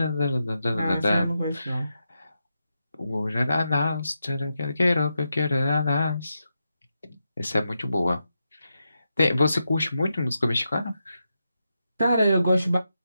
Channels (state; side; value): inverted; both; correlation -0.86